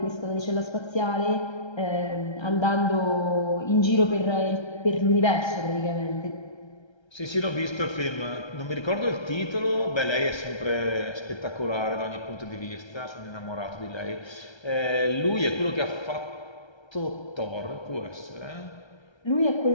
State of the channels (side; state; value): right; late; 1.3 ms